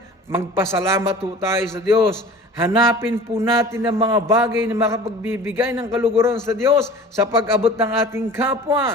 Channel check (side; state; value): both; normal; correlation 0.42